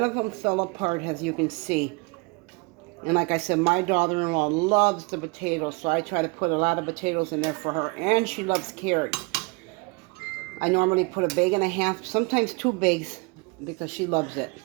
of them fell apart, as you can see. And like I said, my daughter-in-law loves the potatoes, so I try to put a lot of potatoes in there for her. And she loves carrots. I normally put a bag and a half, sometimes 2 bags, because she loves it.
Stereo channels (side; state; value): left; quieter; 28.3 dB